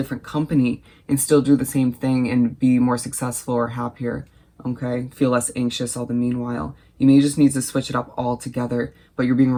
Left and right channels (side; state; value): both; identical; correlation 1.00